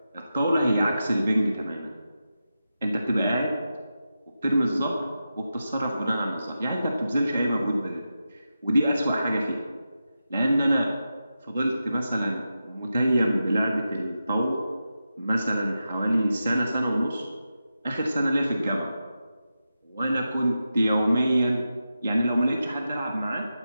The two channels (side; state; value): both; inverted; correlation -0.90